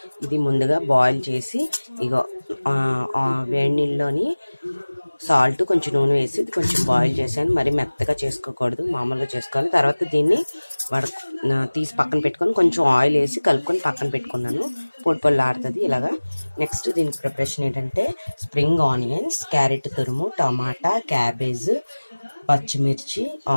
ఇది ముందుగా బాయిల్ చేసి ఇగో వేడి నీళ్ళలోని సాల్ట్ కొంచెం నూనె వేసి ఇది కొంచెం బాయిల్ చేశాను. మరి మెత్తగా చేసుకోకూడదు, మామూలుగా చేసుకోవాలి. తర్వాత దీన్ని తీసి పక్కన పెట్టుకొని కొంచెం ఆయిల్ వేసి కలుపుకొని పక్కన పెట్టుకున్నాను. పొడి పొడి ఆడుతుంది ఇలాగా. నెక్స్ట్ దీనికి ప్రిపరేషన్ ఏంటంటే స్ప్రింగ్ ఆనియన్స్, క్యారెట్ తురుము, టమాటా, క్యాబేజ్, పచ్చిమిర్చి,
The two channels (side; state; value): both; inverted; correlation -1.00